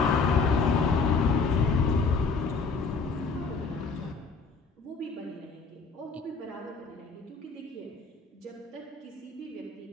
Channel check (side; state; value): right; quieter; 4.6 dB